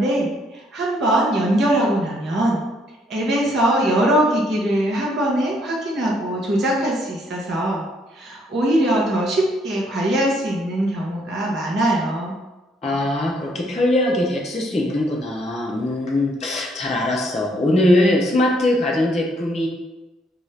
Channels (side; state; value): both; normal; correlation 0.69